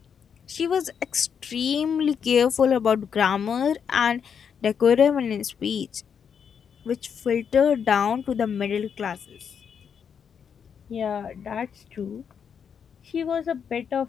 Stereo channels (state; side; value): quieter; right; 7.2 dB